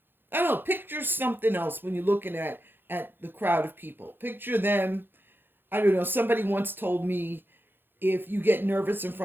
I don't know, picture something else when you're looking at the crowd of people. Picture them, I don't know, somebody once told me, if you get nervous in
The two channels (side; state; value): left; late; 0.10 ms